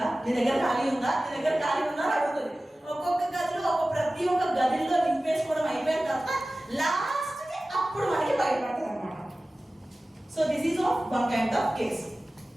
నీ దగ్గర ఖాళీ ఉందా, నీ దగ్గర ఖాళీ ఉందా అని అడుగుతుంది. ఒక్కొక్క గదిలో ప్రతి ఒక్క గదిలో నింపేసుకోవడం అయిపోయిన తర్వాత లాస్ట్ కి అప్పుడు మనకి బయటపడుతుంది అన్నమాట. So this is of one kind of case.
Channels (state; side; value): normal; both; correlation 0.96